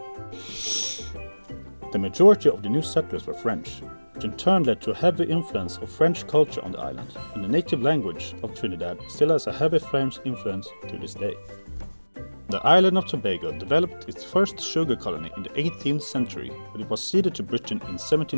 The majority of the new settlers were French, which in turn led to a heavy influence of French culture on the island, and the native language of Trinidad still has a heavy French influence to this day. The island of Tobago developed its first sugar colony in the 18th century, but it was ceded to Britain in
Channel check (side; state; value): both; inverted; correlation -1.00